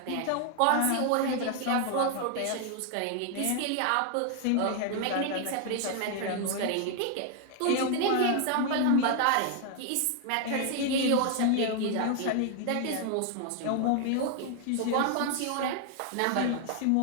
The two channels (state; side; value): different; both; correlation 0.00